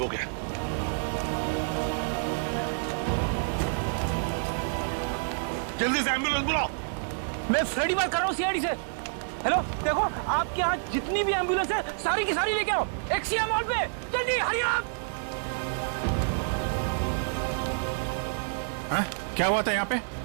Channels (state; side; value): silent; left; digital silence